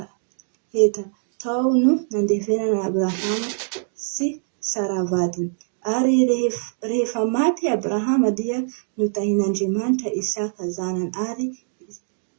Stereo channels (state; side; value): silent; left; digital silence